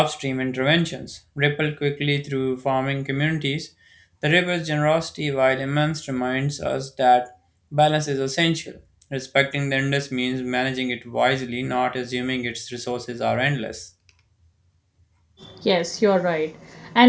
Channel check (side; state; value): both; identical; correlation 1.00